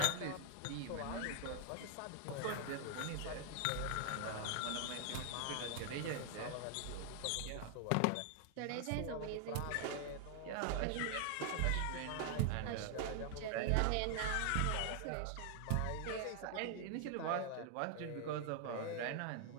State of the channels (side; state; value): both; different; correlation 0.00